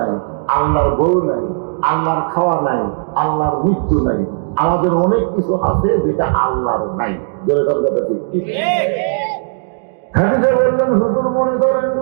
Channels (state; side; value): silent; left; digital silence